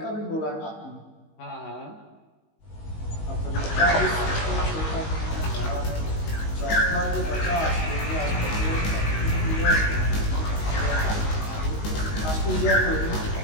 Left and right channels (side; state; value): right; late; 19 ms